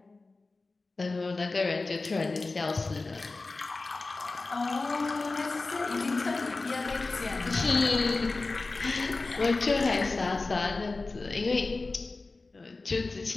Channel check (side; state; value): right; quieter; 3.5 dB